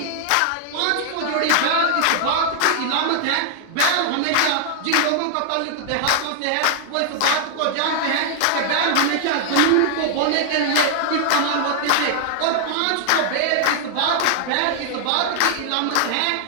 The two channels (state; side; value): different; both; correlation 0.00